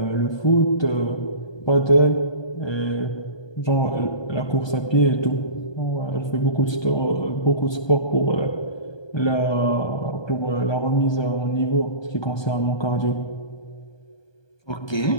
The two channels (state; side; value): late; right; 1.2 ms